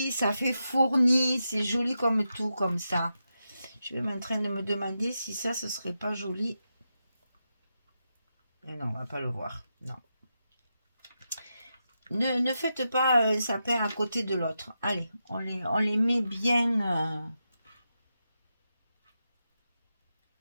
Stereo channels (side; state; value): both; inverted; correlation -0.87